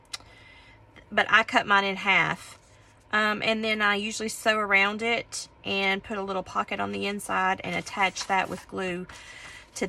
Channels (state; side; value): identical; both; correlation 1.00